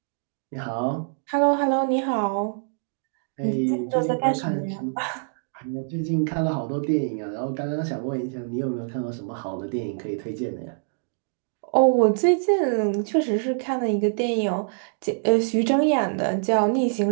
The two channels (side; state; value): left; silent; digital silence